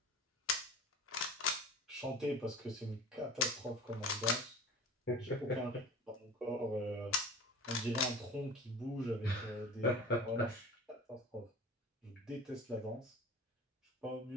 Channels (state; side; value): normal; both; correlation 0.38